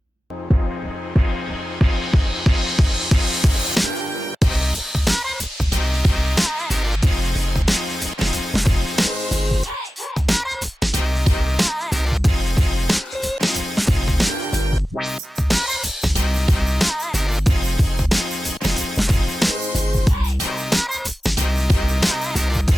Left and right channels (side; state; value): both; normal; correlation 0.94